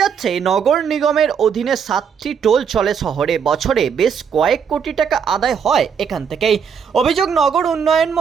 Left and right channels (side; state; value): left; quieter; 7.0 dB